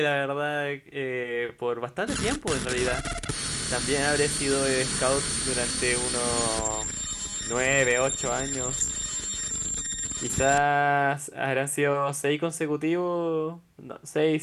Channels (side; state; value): both; identical; correlation 1.00